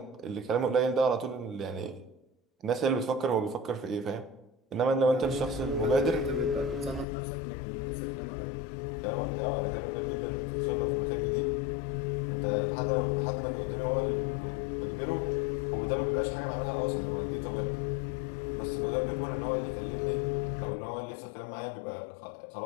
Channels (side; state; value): right; drops out; at 7.1 s